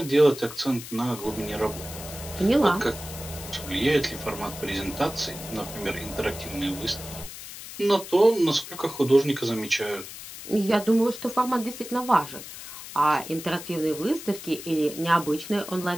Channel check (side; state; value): left; noise; hiss, 12 dB below the sound